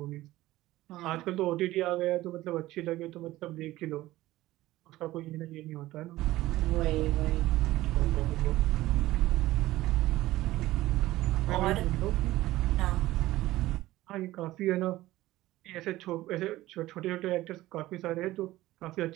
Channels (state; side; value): quieter; left; 16.6 dB